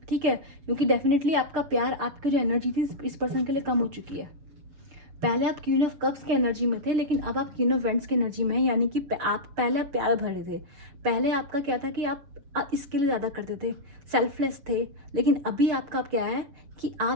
ठीक है, क्योंकि डेफिनेटली आपका प्यार, आपकी जो एनर्जी थी इस पर्सन के लिए कम हो चुकी है। पहले आप क्वीन ऑफ कप्स की एनर्जी में थे, लेकिन अब आप क्वीन ऑफ वेंट्स की एनर्जी में है, यानी कि आप पहले प्यार भरे थे। पहले आपका क्या था कि आप इसके लिए ज़्यादा करते थे, सेल्फलेस थे। लेकिन अभी आपका क्या है कि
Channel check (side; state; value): left; late; 7.2 ms